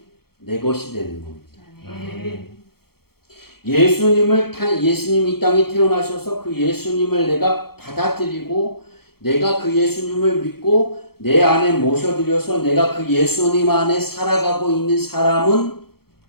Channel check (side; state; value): right; late; 0.95 ms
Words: 내 것이 되는 겁니다. 아멘. 예수님이 이 땅에 태어나셔서 그 예수님을 내가 받아들이고 내가 그 예수님을 믿고 내 안에 모셔들여서 내가 그 예수님 안에 살아가고 있는 사람은